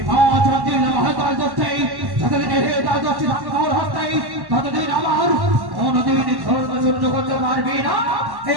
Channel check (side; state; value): left; late; 1.1 ms